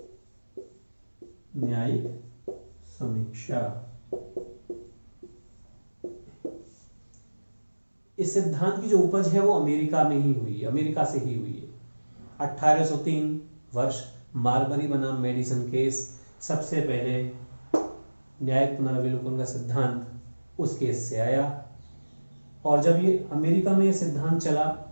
न्यायिक समीक्षा, इस सिद्धांत की जो उपज है वो अमेरिका में ही हुई है, अमेरिका से ही हुई है। 1803 वर्ष मार्बरी बनाम मेडिसन केस, सबसे पहले न्यायिक पुनर्विलोकन का सिद्धांत उस केस से आया। और जब ये अमेरिका में ये सिद्धांत चला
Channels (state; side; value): inverted; both; correlation -1.00